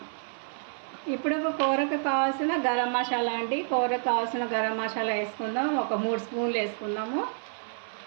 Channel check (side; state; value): left; silent; 58 dB below the other